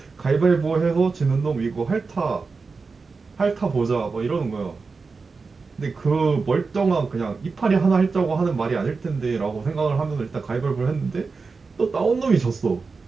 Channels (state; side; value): quieter; left; 4.5 dB